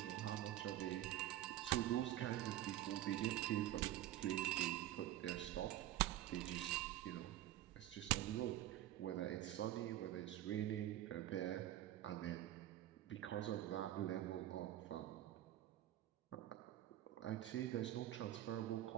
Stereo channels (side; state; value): left; quieter; 13.5 dB